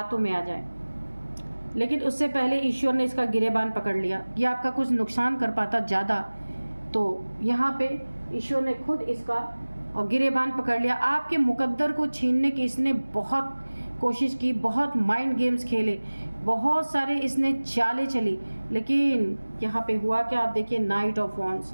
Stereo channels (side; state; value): both; inverted; correlation -1.00